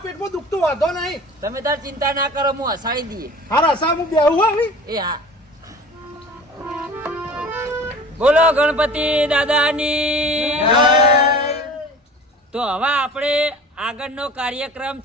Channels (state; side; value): normal; both; correlation 0.42